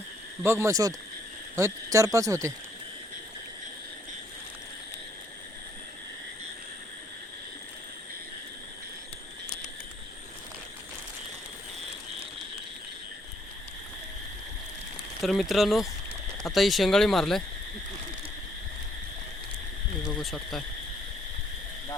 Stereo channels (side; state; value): both; normal; correlation 0.68